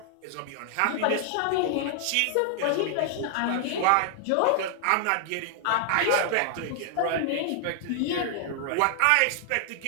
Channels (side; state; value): both; different; correlation 0.00